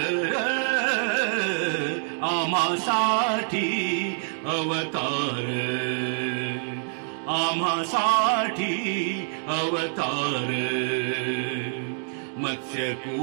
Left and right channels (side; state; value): left; silent; digital silence